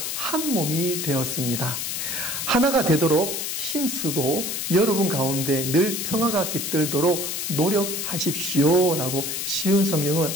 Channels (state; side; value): noise; left; hiss, 3 dB below the sound